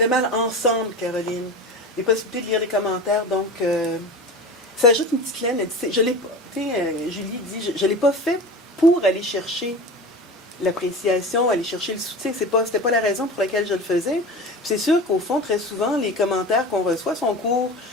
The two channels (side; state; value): both; normal; correlation 0.31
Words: mal ensemble, Caroline. Les possibilités de lire les commentaires, donc ça ajoute une petite laine. Je l'ai pas, Julie dit, je l'ai pas fait pour aller chercher l'appréciation, aller chercher le soutien. C'était pas la raison pour laquelle je le faisais. Puis c'est sûr qu'au fond, très souvent, les commentaires qu'on reçoit sont courts.